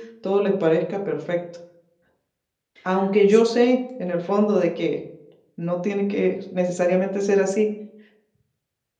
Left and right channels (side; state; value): both; identical; correlation 1.00